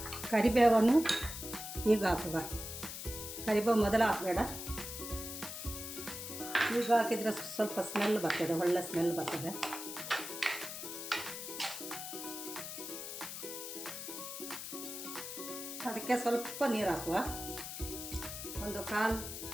ಕರಿಬೇವನ್ನು ಈಗ ಹಾಕುವ. ಕರಿಬೇವು ಮೊದಲು ಹಾಕಬೇಡ, ಈಗ ಹಾಕಿದರೆ ಸ್ವಲ್ಪ ಸ್ಮೆಲ್ ಬರ್ತದೆ, ಒಳ್ಳೆ ಸ್ಮೆಲ್ ಬರ್ತದೆ. ಅದಕ್ಕೆ ಸ್ವಲ್ಪ ನೀರು ಹಾಕುವ, 1/4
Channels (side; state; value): left; noise; hiss, 7 dB below the sound